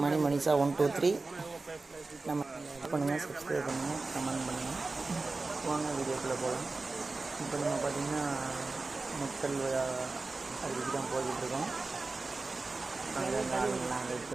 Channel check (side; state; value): left; quieter; 3.6 dB